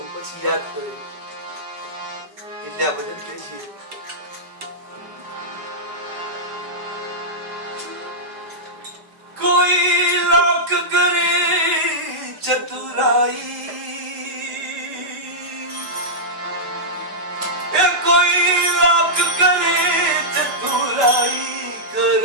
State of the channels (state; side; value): late; left; 5.0 ms